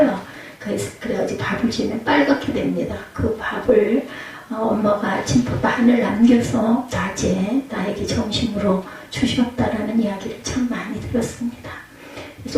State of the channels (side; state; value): both; identical; correlation 1.00